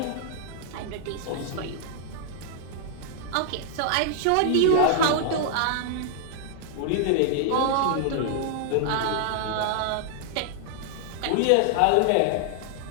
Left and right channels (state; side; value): different; both; correlation 0.00